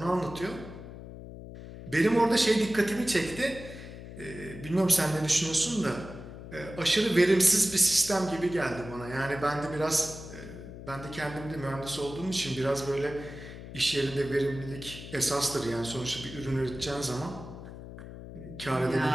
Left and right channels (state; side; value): noise; left; hum, 13 dB below the sound